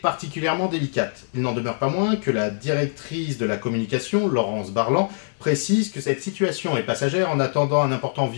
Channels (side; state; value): right; silent; digital silence